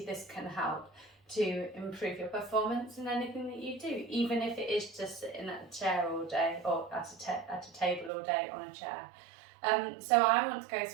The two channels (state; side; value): drops out; left; at 8.1 s